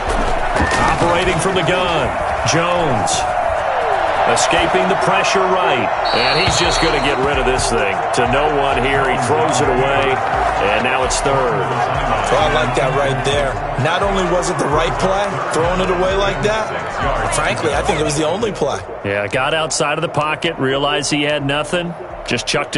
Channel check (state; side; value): identical; both; correlation 1.00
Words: Operating from the gun, Jones. Escaping the pressure right. And he's just going to get rid of this thing. To no one here. He throws it away. And now it's 3rd. Well, I like that right there. Not only was it the right play, throwing it away like that, frankly, I think it was the only play. Yeah, got outside of the pocket, realized he had nothing, just chucked